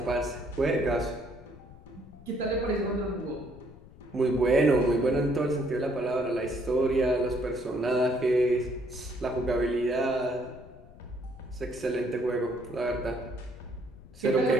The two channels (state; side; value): noise; left; rumble, 20 dB below the sound